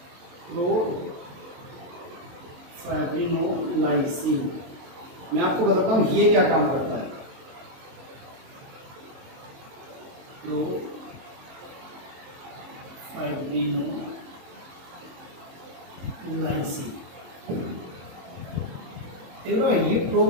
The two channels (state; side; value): late; left; 22 ms